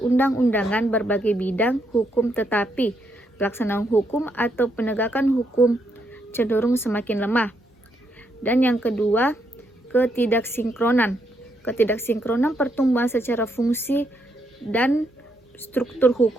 berbagai bidang hukum, tetapi pelaksanaan hukum atau penegakan hukum cenderung semakin lemah. Dan yang kedua, ketidaksinkronan. Ketidaksinkronan pertumbuhan secara fungsi dan struktur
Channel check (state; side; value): normal; both; correlation 0.77